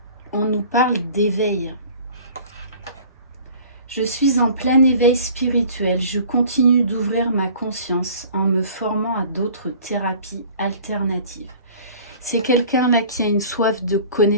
on nous parle d'éveil. Je suis en plein éveil spirituel. Je continue d'ouvrir ma conscience en me formant à d'autres thérapies alternatives. C'est quelqu'un là qui a une soif de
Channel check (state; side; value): inverted; both; correlation -0.47